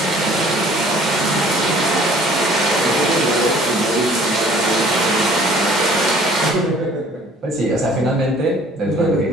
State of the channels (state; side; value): normal; both; correlation 0.54